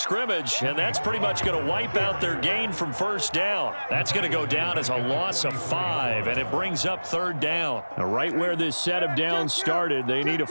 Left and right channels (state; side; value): inverted; both; correlation -1.00